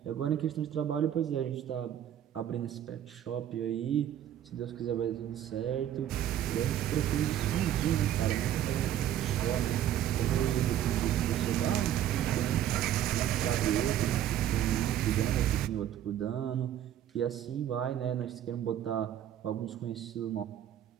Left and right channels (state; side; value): quieter; left; 11.1 dB